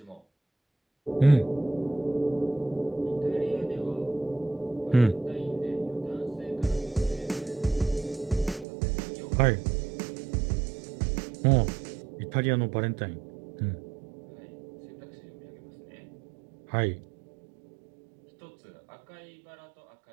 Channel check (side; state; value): left; drops out; at 8.7 s